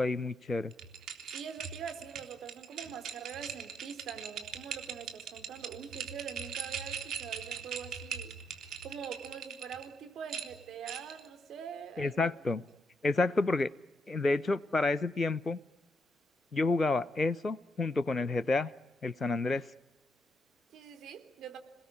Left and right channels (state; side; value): normal; both; correlation 0.79